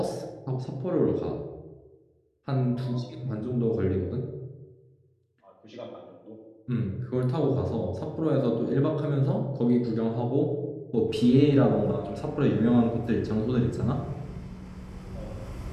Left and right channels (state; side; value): identical; both; correlation 1.00